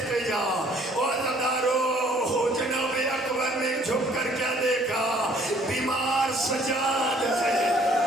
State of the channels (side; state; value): both; normal; correlation 0.59